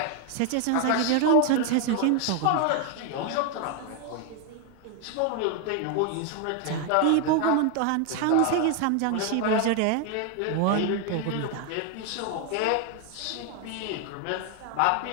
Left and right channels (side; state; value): both; different; correlation 0.01